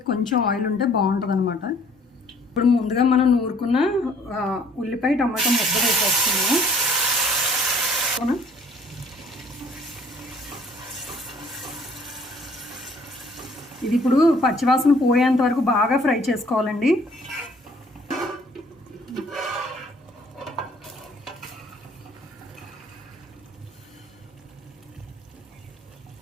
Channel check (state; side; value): normal; both; correlation 0.58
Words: కొంచెం ఆయిల్ ఉంటే బాగుంటుంది అనమాట. ఇప్పుడు ముందుగా మనం నూరుకున్న ఉల్లిపాయ టమాటా ముద్ద వేసేస్తున్నాను. ఇది ఇప్పుడు పచ్చివాసన పోయేంత వరకు బాగా ఫ్రై చేసుకోవాలండి.